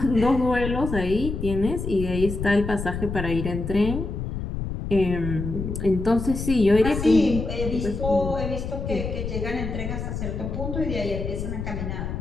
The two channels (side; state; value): left; noise; rumble, 5 dB below the sound